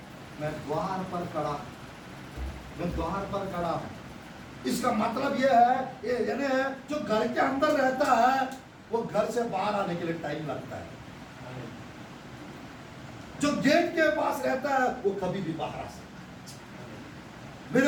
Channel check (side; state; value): both; identical; correlation 1.00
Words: मैं द्वार पर खड़ा, मैं द्वार पर खड़ा हूं। इसका मतलब यह है, यानी जो घर के अंदर रहता है वो घर से बाहर आने के लिए टाइम लगता है। जो गेट के पास रहता है वो कभी भी बाहर आ सकता है। मेरे